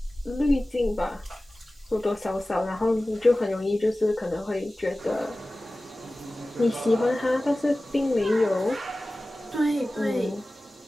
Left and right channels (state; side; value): normal; both; correlation 0.97